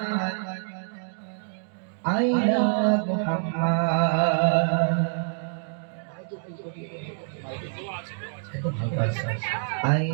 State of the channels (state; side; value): silent; left; digital silence